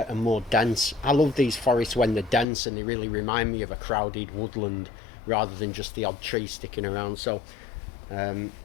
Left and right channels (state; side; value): drops out; right; at 2.5 s